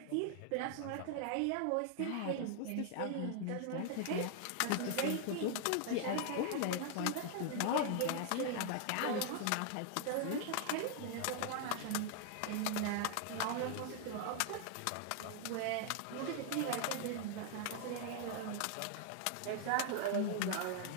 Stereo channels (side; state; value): both; different; correlation 0.00